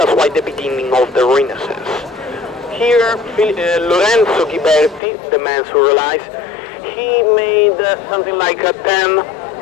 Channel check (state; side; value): drops out; right; at 5.0 s